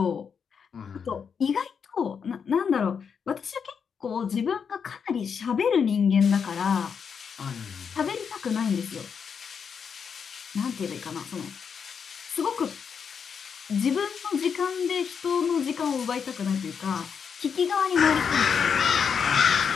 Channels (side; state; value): right; quieter; 6.6 dB